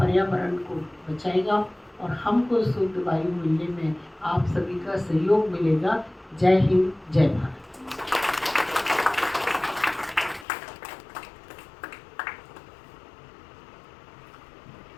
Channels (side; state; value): right; drops out; at 10.5 s